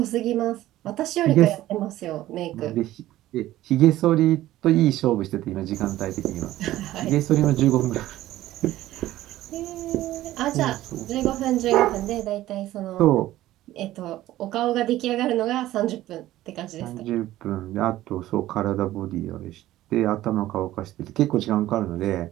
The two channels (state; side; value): quieter; left; 15.0 dB